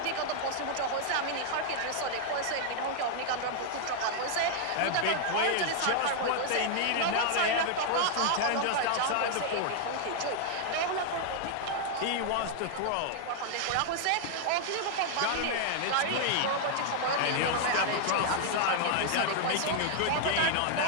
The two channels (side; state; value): both; different; correlation 0.00